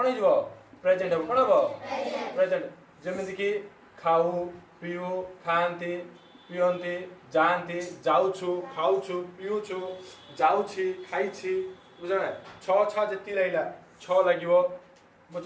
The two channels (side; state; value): both; identical; correlation 1.00